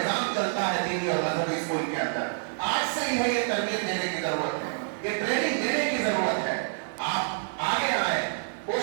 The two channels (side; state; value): left; silent; digital silence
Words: چلتا ہے دینی اور مذہبی اسکول کے اندر. آج سے ہی یہ تربیت دینے کی ضرورت ہے, یہ ٹریننگ دینے کی ضرورت ہے. آپ آگے آئیں,